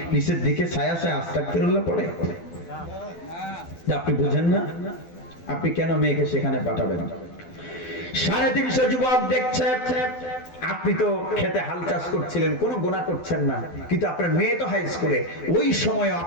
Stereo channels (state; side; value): late; right; 12 ms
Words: নিচের দিকে ছায়া ছায়া আস্তাগফিরুল্লাহ পড়ে? আপনি বুঝেন না? আপনি কেন মেয়েকে সেখানে পাঠাবেন? 350 যুবক দেখছে, আপনি তো খেতে হাল চাষ করছিলেন, কোনো গুনাহ করছেন না, কিন্তু আপনার মেয়ে তো হাই স্কুলে। ওই সময়